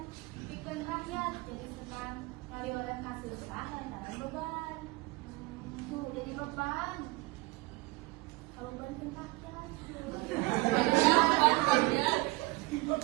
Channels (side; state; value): left; quieter; 23.3 dB